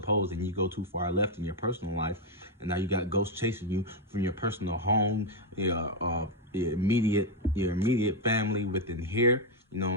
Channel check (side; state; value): both; normal; correlation 0.03